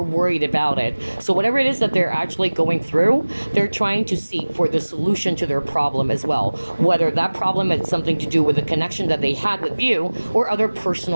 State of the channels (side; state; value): both; inverted; correlation -1.00